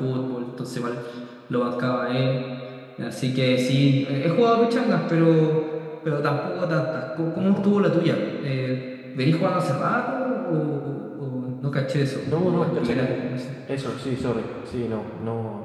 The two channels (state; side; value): identical; both; correlation 1.00